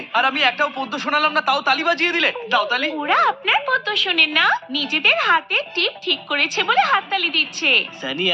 আর আমি একটাও পদ্য শোনালাম না, তাও তালি বাজিয়ে দিলে। দাও তালি। ওরা আপনার পদ্য শোনেন না, নিজেদের হাতে টিপ ঠিক করেছে বলে হাততালি দিচ্ছে। সানি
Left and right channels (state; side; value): identical; both; correlation 1.00